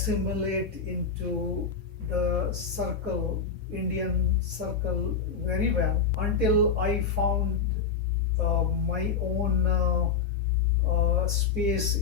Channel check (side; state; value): right; quieter; 5.8 dB